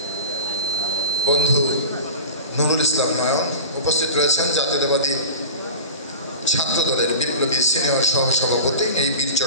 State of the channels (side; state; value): both; inverted; correlation -0.33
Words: বন্ধু নুরুল ইসলাম নয়ন। উপস্থিত রয়েছেন জাতীয়তাবাদী ছাত্রদলের বিপ্লবী সিনিয়র সহসভাপতি, এই বীর